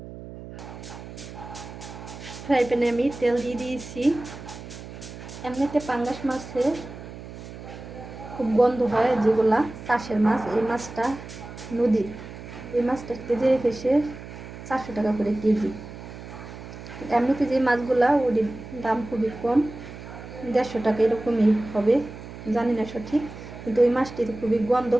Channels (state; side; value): noise; right; hum, 13 dB below the sound